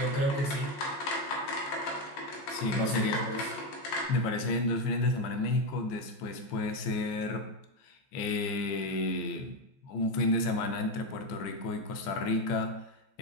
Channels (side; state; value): right; late; 14 ms